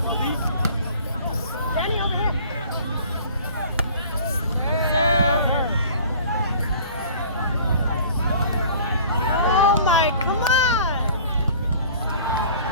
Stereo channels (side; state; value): both; inverted; correlation -0.48